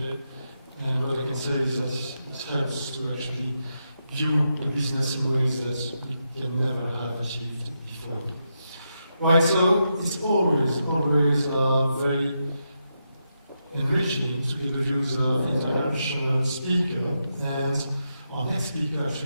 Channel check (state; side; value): inverted; both; correlation -0.85